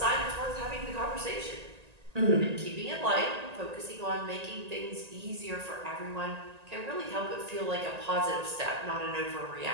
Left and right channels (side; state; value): left; late; 1.9 ms